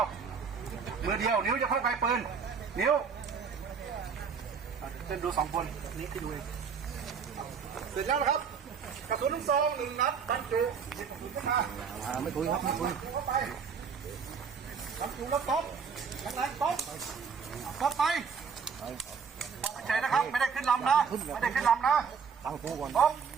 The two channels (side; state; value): left; quieter; 6.2 dB